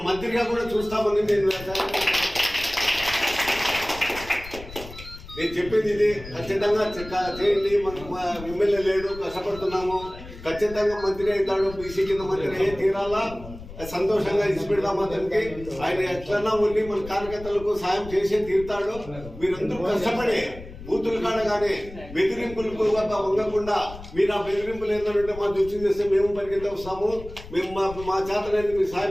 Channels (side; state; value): left; noise; rumble, 15 dB below the sound